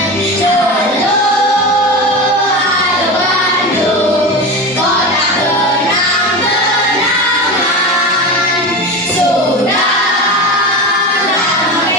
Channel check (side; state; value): both; normal; correlation 0.25